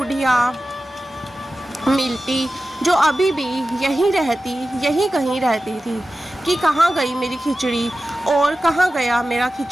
मिलती जो अभी भी यहीं कहीं रहती थी कि कहाँ गई मेरी खिचड़ी और कहाँ गया मेरा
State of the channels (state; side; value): normal; both; correlation 0.94